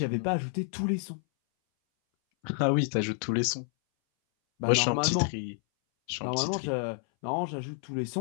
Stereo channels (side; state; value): right; silent; 58 dB below the other